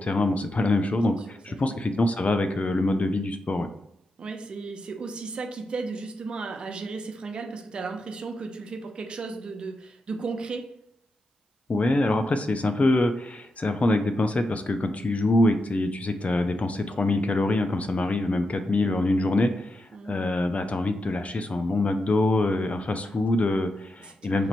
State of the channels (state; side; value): normal; both; correlation 0.86